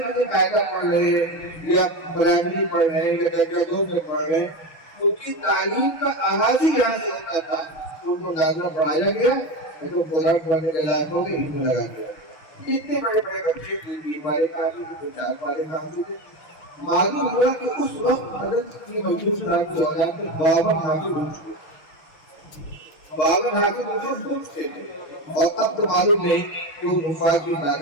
مجھے قاعدہ پڑھ رہے ہیں یا پرائمری پڑھ رہے ہیں یا درجہ 2 میں پڑھ رہے ہیں. ان کی تعلیم کا آغاز ہی یہاں سے ہوتا تھا. ان کو نازلہ پڑھایا گیا تو قرآن پڑھنے کے لائق ہو کے علم لگا دیا. اتنے بڑے بڑے بچے 3 پارے کافی تھے، 4 پارے کافی تھے. معلوم ہوا کہ اس وقت حضرت کی محمود صاحب کی اولاد میں 52 حافظ ہو چکے. 52 حافظ پوچھتے تھے اور اب تو معلوم نہیں کہ وہ حفاظ کی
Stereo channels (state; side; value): late; right; 6.3 ms